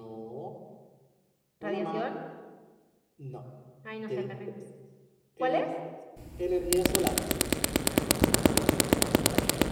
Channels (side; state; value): both; identical; correlation 1.00